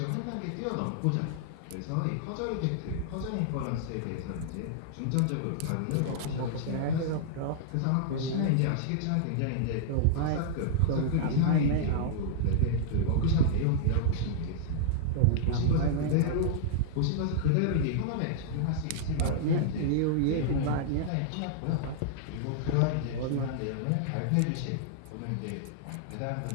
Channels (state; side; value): different; both; correlation -0.01